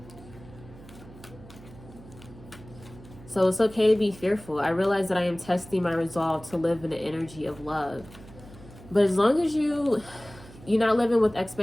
So it's okay to be fearful. I realize that I am testing my resolve to live in the energy of love. But as long as you're not living with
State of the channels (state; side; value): noise; right; hum, 19 dB below the sound